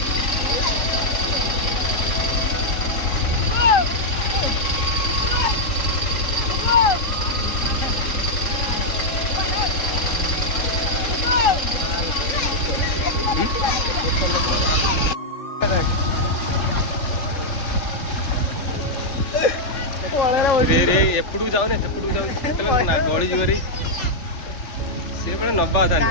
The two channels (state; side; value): late; right; 3.7 ms